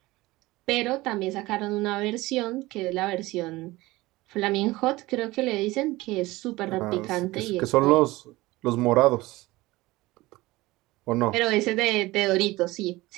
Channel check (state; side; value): quieter; left; 19.7 dB